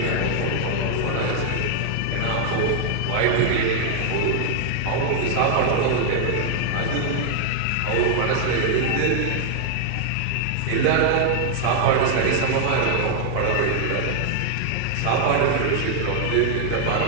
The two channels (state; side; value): different; both; correlation 0.00